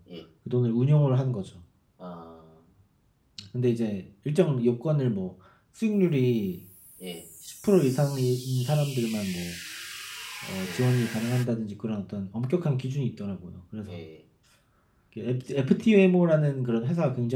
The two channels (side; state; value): both; identical; correlation 1.00